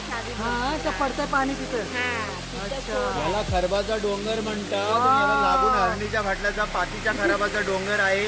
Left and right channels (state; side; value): identical; both; correlation 1.00